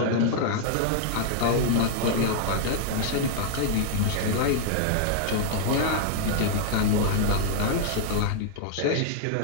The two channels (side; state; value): both; different; correlation 0.00